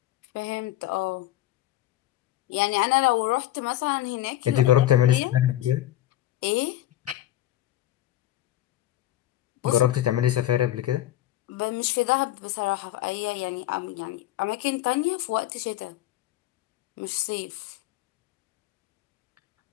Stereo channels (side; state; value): right; quieter; 14.1 dB